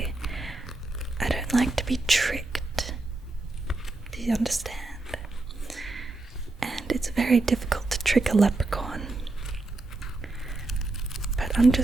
I don't like to be tricked, do you understand? And it's very difficult to trick a leprechaun. But I'm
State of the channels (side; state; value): left; quieter; 3.1 dB